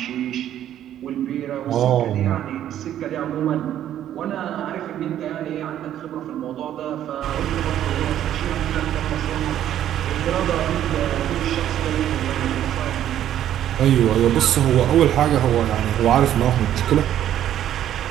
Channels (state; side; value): quieter; left; 11.3 dB